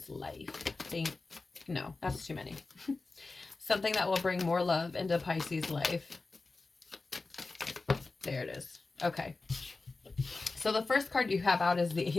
life? No, that's too many. Something that will bring more love into Pisces life. There it is. Okay. So the first card you have out is the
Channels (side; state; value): right; quieter; 3.6 dB